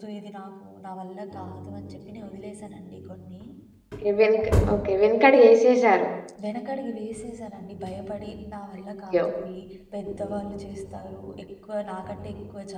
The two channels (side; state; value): both; identical; correlation 1.00